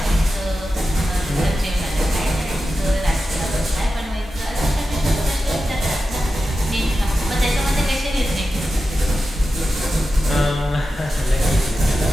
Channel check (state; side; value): normal; both; correlation 0.92